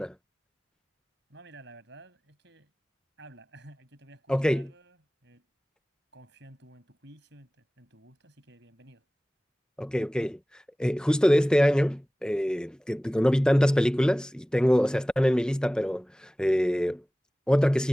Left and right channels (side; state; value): both; normal; correlation 0.98